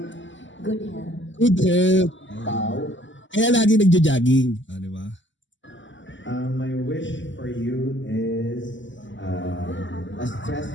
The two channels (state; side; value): late; right; 0.54 ms